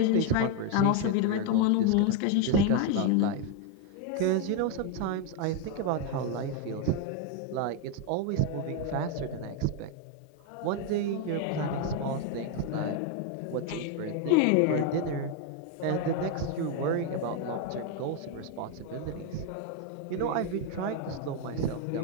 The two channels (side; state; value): both; different; correlation 0.01